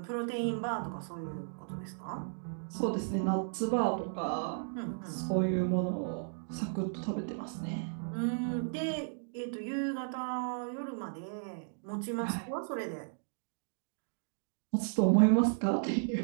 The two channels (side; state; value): left; silent; digital silence